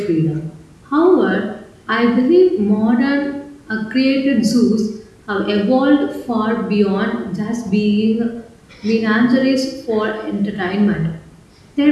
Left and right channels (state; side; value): identical; both; correlation 1.00